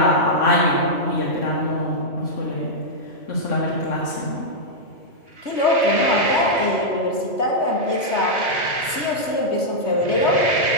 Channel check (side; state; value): right; late; 3.2 ms